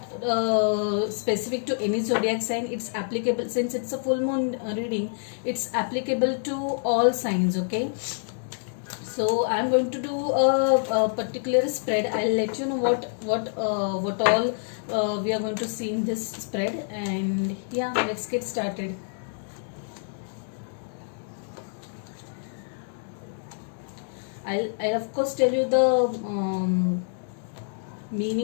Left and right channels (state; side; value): silent; right; digital silence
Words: specific to any zodiac sign. It's applicable, since it's a full moon reading. It's applicable to all signs. Okay. So I'm going to do a particular spread. I'll let you know what all we are going to see in this spread. And yeah, let's get started. I'll of course tell you the